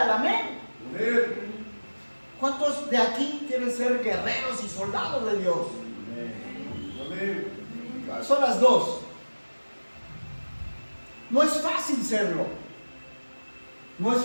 amén. Amén. ¿Cuántos de aquí quieren ser guerreros y soldados de Dios? Amén. Son las dos. No es fácil serlo. No es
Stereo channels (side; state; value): both; inverted; correlation -1.00